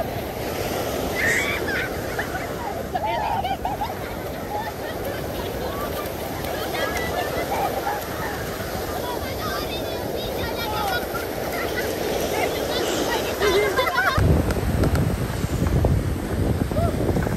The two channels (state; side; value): identical; both; correlation 1.00